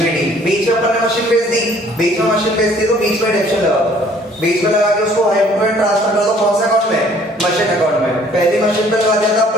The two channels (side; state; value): both; normal; correlation 0.57